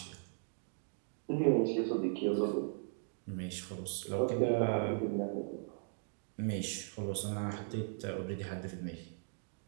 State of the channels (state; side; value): silent; left; digital silence